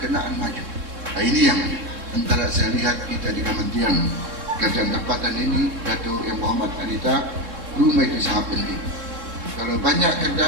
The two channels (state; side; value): late; left; 3.7 ms